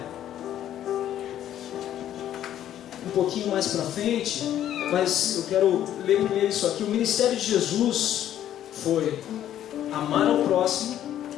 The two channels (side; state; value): right; quieter; 11.4 dB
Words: um pouquinho mais para frente, mas eu quero ler primeiro isso aqui. O ministério de Jesus foi amar ao próximo,